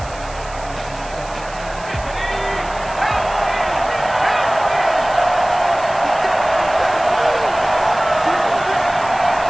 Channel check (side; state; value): right; noise; hiss, 19 dB below the sound